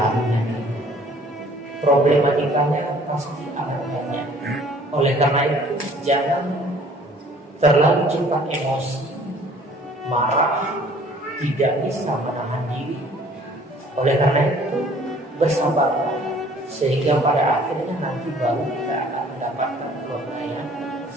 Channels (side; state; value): both; normal; correlation 0.55